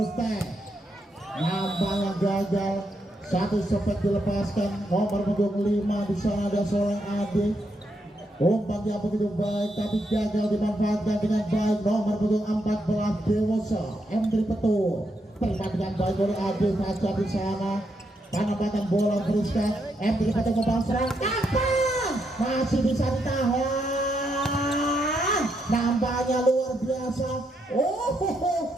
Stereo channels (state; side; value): normal; both; correlation 0.79